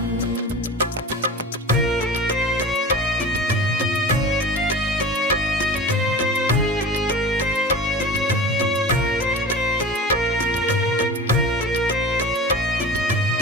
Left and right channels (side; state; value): both; normal; correlation 0.34